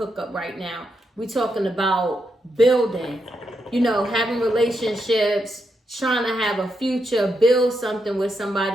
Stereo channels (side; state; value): both; normal; correlation 0.82